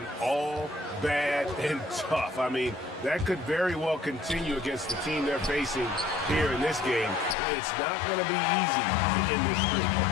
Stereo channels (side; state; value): right; drops out; at 7.4 s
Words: all bad and tough. I mean, that could very well continue against the team they're facing here in this game. It's not going to be easy to end this streak.